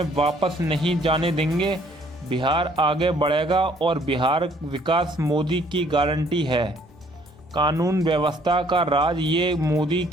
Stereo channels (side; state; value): both; normal; correlation 0.62